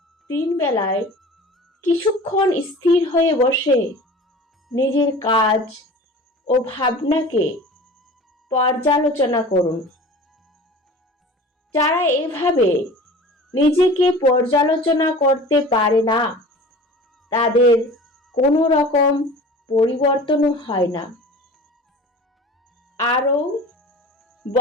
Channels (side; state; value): both; normal; correlation 0.40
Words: দিনবেলায় কিছুক্ষণ স্থির হয়ে বসে নিজের কাজ ও ভাবনাকে পর্যালোচনা করুন। যারা এভাবে নিজেকে পর্যালোচনা করতে পারে না, তাদের কোনো রকম পরিবর্তনও হয় না। আরও